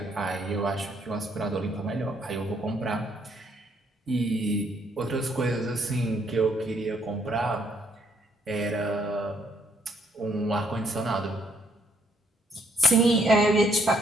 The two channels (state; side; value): normal; both; correlation 0.69